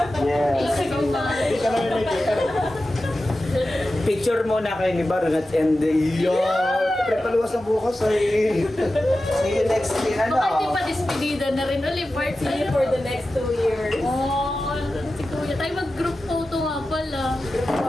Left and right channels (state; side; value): normal; both; correlation 0.93